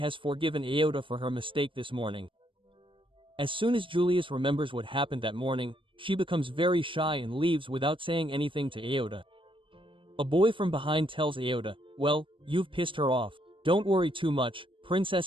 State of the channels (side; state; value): left; late; 0.25 ms